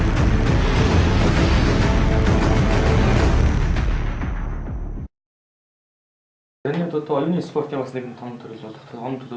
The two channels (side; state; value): both; identical; correlation 1.00